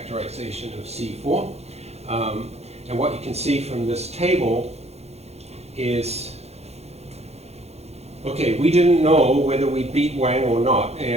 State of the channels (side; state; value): left; late; 0.31 ms